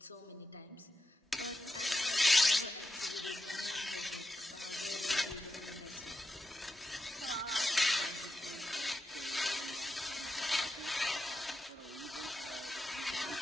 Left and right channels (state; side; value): normal; both; correlation 0.88